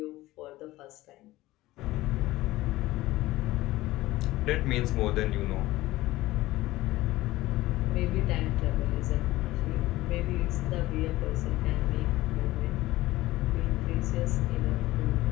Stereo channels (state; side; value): quieter; right; 17.5 dB